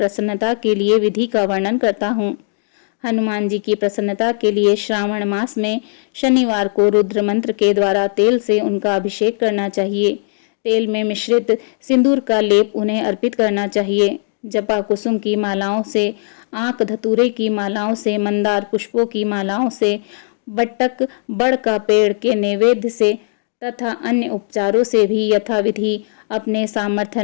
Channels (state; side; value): silent; right; digital silence